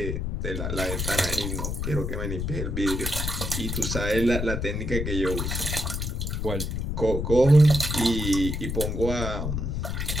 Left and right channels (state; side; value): noise; left; rumble, 2 dB below the sound